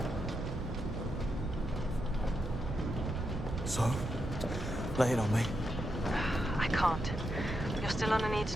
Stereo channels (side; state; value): right; noise; rumble, 7 dB below the sound